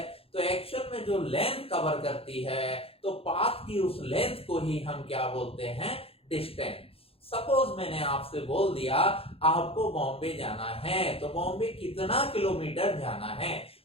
तो एक्चुअल में जो लेंथ कवर करती है, तो पाथ की उस लेंथ को ही हम क्या बोलते हैं? डिस्टेंस। सपोज मैंने आपसे बोल दिया आपको बॉम्बे जाना है, तो बॉम्बे कितना किलोमीटर जाना है?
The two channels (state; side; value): late; right; 0.27 ms